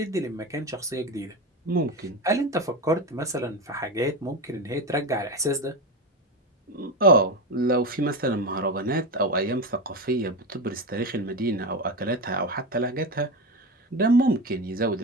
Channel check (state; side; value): normal; both; correlation 0.19